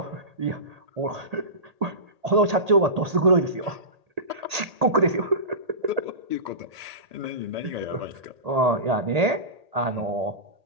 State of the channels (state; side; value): late; left; 1.8 ms